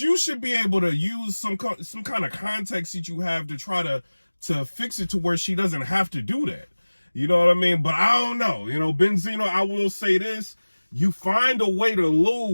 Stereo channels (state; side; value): inverted; both; correlation -1.00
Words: should be able to use some kind of context that you have to try to fix it to where she doesn't have to do that. You know what I mean? But I don't know. You know, Benzino, I will say this. You find a way to